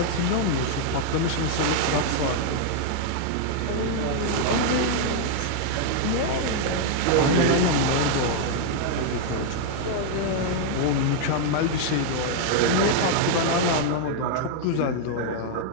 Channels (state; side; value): different; both; correlation 0.00